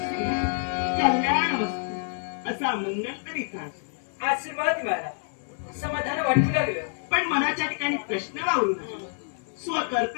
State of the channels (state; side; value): silent; right; 60 dB below the other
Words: कल्याण मस्तू असा मंगलकरी तास आशीर्वाद मिळाला. समाधान वाटू लागलं. पण मनाच्या ठिकाणी प्रश्न वावरू नये.